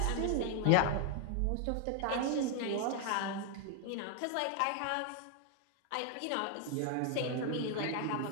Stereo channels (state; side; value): different; both; correlation 0.00